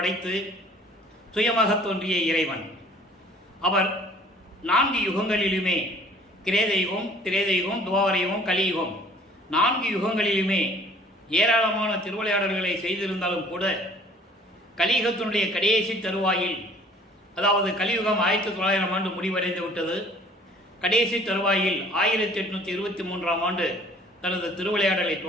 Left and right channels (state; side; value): normal; both; correlation 0.53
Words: சுயமாக தோன்றிய இறைவன். அவர் 4 யுகங்களிலுமே, கிரேதயுகம், திரேதயுகம், துவாபரயுகம், கலியுகம், 4 யுகங்களிலுமே ஏராளமான திருவிளையாடல்களை செய்திருந்தாலும் கூட கலியுகத்தினுடைய கடைசி தருவாயில், அதாவது கலியுகம் 1900 ஆண்டு முடிவடைந்து விட்டது. கடைசி தருவாயில் 1823ஆம் ஆண்டு தனது திருவிளையாடலை